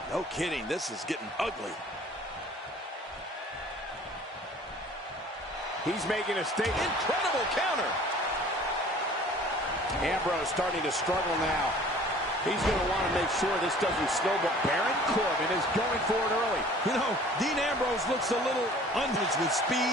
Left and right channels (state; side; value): normal; both; correlation 0.49